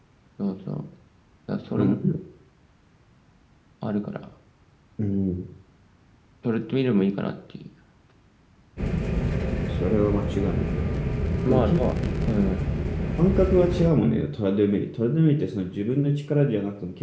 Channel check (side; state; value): both; identical; correlation 1.00